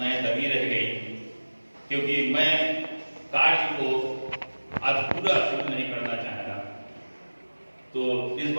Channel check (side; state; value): both; inverted; correlation -1.00